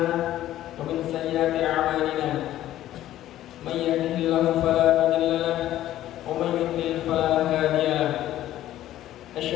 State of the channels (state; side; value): quieter; right; 13.4 dB